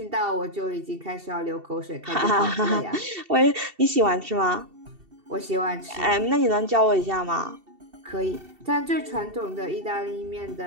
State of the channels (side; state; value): left; late; 2.7 ms